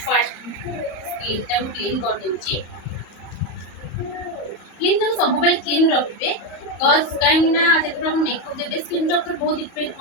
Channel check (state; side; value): late; right; 34 ms